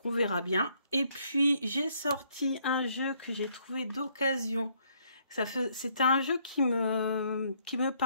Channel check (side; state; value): both; inverted; correlation -0.69